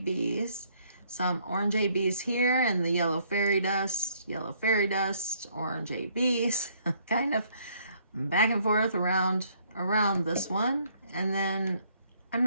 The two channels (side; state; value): both; inverted; correlation -0.65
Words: some orange ABs here, and the yellow fairy dust, orange ABs, kind of back and forth around this one. And then I'm